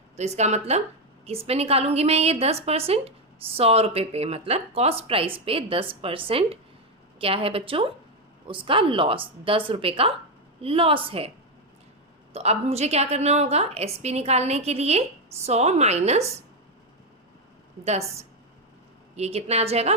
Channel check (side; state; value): both; normal; correlation 0.06